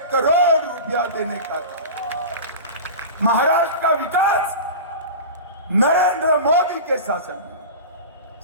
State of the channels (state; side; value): inverted; both; correlation -0.31